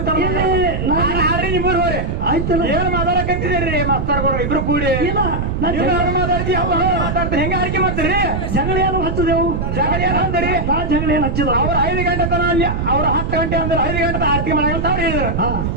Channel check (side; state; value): right; noise; rumble, 2 dB below the sound